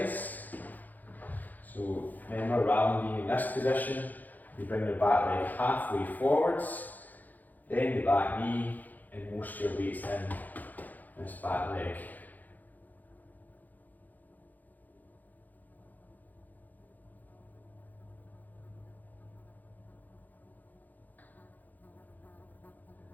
So remember, rather than being in this position, you bring the back leg halfway forwards, then the back knee, and most of your weight's in this back leg.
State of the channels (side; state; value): right; late; 0.083 ms